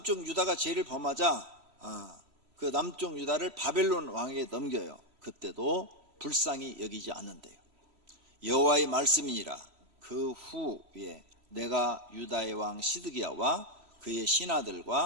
유다가 죄를 범하자 그 남쪽 유다를 바벨론 왕에게 넘겨요. 그때도 불쌍히 여기지 않는데요. 여호와의 말씀이니라. 그 후에 내가 유다의 왕 시드기야와 그의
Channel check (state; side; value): late; left; 3.1 ms